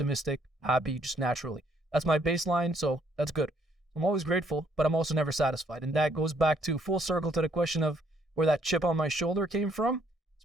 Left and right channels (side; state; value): both; normal; correlation 0.67